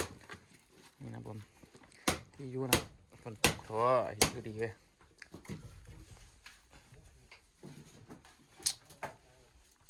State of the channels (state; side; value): identical; both; correlation 1.00